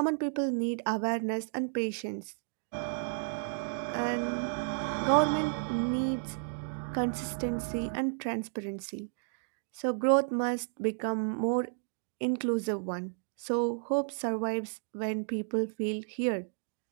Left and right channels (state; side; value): silent; left; digital silence